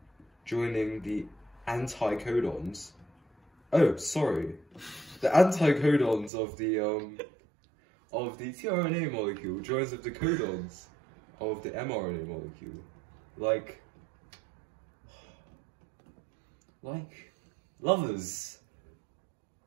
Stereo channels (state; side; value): drops out; left; at 6.3 s